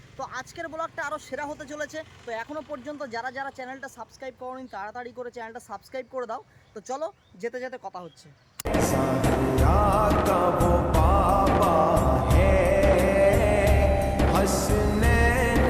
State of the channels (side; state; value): both; identical; correlation 1.00